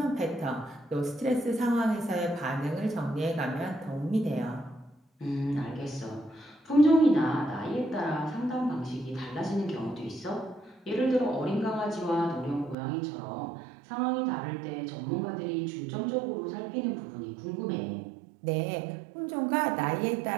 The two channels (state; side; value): drops out; left; at 12.8 s